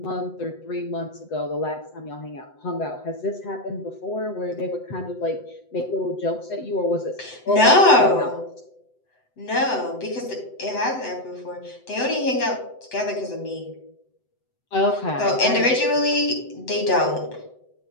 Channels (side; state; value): right; late; 7.9 ms